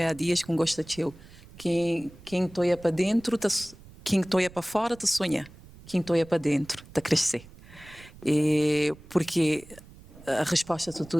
há dias que gosta de eu. Quem toia para dentro, quem toia para fora, te sonha. Quem toia para dentro, te crescer. Porque a resposta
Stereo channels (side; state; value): right; noise; rumble, 21 dB below the sound